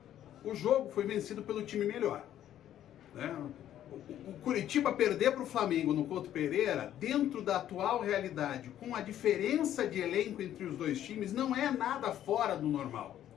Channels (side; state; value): right; quieter; 11.5 dB